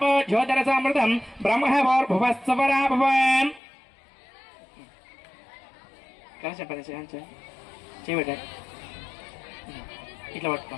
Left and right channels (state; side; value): drops out; right; at 3.6 s